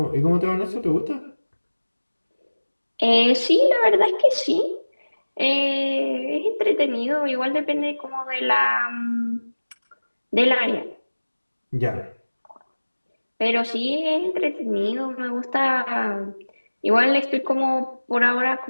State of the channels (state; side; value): inverted; both; correlation -1.00